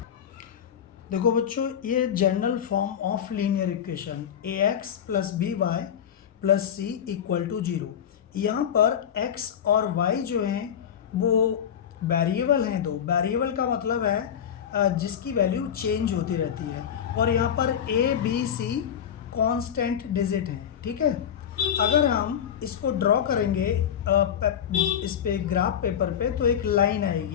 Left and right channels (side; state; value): right; quieter; 8.8 dB